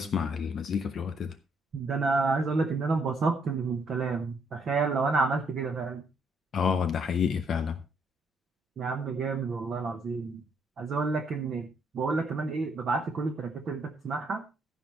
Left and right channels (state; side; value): normal; both; correlation 0.70